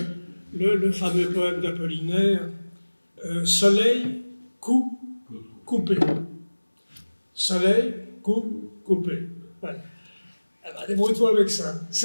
le fameux poème d'Apollinaire, Soleil, coup, coupé. Soleil, coup, coupé. Voilà. Eh ben, débrouille-toi avec ça.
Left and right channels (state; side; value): inverted; both; correlation -1.00